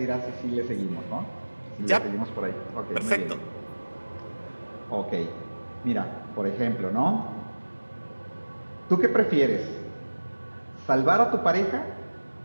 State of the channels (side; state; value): both; inverted; correlation -1.00